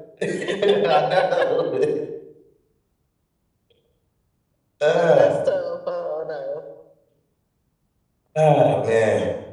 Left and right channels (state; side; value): identical; both; correlation 1.00